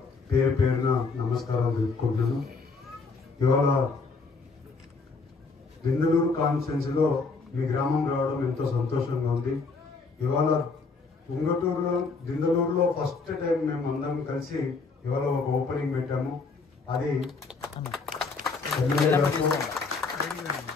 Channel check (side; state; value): right; quieter; 4.3 dB